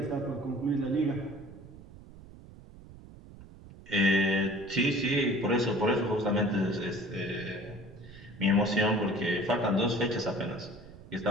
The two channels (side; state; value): right; noise; rumble, 18 dB below the sound